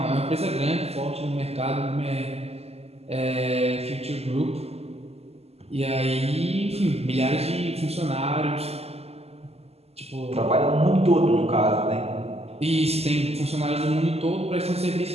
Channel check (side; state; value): left; late; 0.30 ms